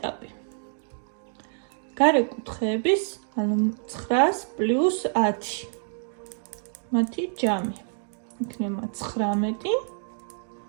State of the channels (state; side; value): silent; left; digital silence